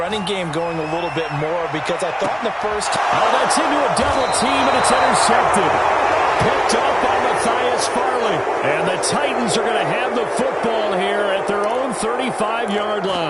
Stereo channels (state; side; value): identical; both; correlation 1.00